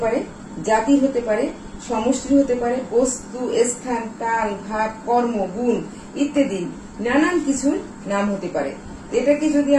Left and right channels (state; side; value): identical; both; correlation 1.00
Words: পারে, জাতির হতে পারে, সমষ্টির হতে পারে, বস্তু, স্থান, কাল, ভাব, কর্ম, গুণ ইত্যাদি নানান কিছুর নাম হতে পারে। এটাকে যদি